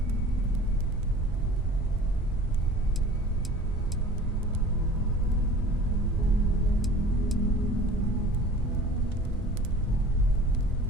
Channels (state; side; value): normal; both; correlation 0.44